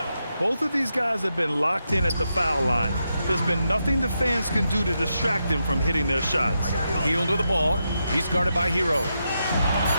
Both of these guys have been locked in at the foul line. There's been nothing the fans can do to distract them from hitting their shots. Hield with the ball. He's guarded by Herro.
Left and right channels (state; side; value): inverted; both; correlation -0.85